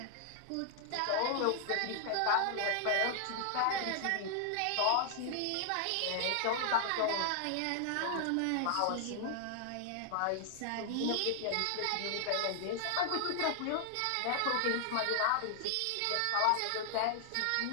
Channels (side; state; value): both; different; correlation 0.00